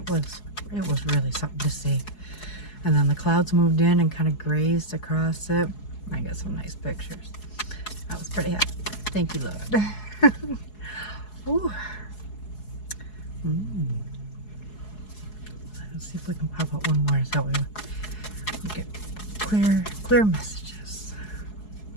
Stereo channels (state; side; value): late; right; 4.7 ms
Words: was really something to see. And then the clouds moved in and kind of grazed across it. I got some nice pictures. I was pretty happy. Thank you, Lord. Ooh. Let's see if we can pop out one more. Is that way we get clear messages.